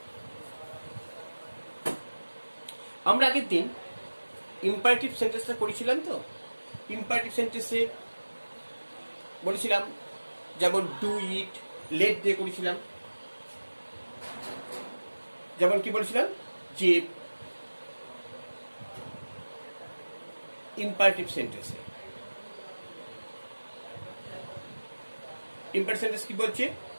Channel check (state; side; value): inverted; both; correlation -1.00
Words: আমরা আগের দিন ইম্পারেটিভ সেন্টেন্সটা করেছিলাম, তো ইম্পারেটিভ সেন্টেন্সে বলেছিলাম যেমন ডু ইট, লেট দিয়ে করেছিলাম। যেমন কি বলেছিলাম যে ইম্পারেটিভ সেন্টেন্সে ইম্পারেটিভ সেন্টেন্স কি বলছে,